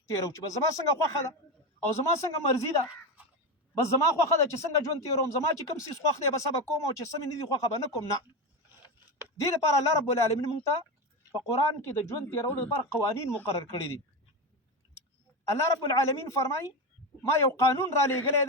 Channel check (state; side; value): normal; both; correlation 0.17